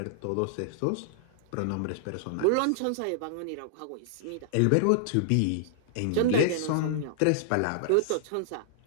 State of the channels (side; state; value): both; different; correlation -0.01